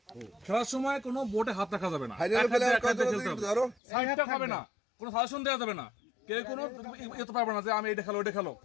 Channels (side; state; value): right; drops out; at 3.8 s